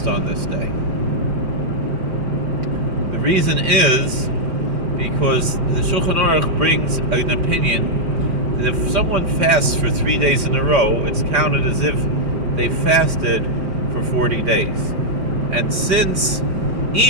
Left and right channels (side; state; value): left; late; 5.7 ms